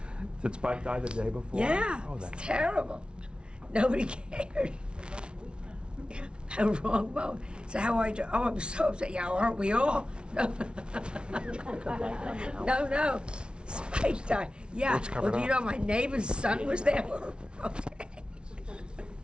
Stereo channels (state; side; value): late; left; 0.057 ms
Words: Did Spike die the day before? Yeah, Oh, it's that's terrible. Nobody cared. A wrong moment. So how are you? Oh, I'm so upset. Yeah, aren't we all? No. No. Spike died. Yeah. Let's cover Well, do it you up. know my neighbor's son was there? Okay.